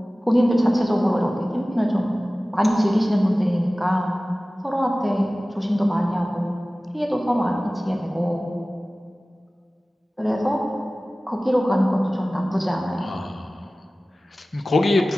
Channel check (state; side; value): normal; both; correlation 0.97